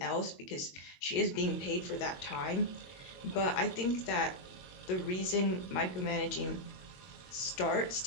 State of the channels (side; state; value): right; late; 22 ms